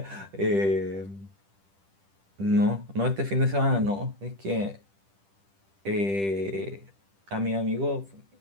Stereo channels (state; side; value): late; left; 10 ms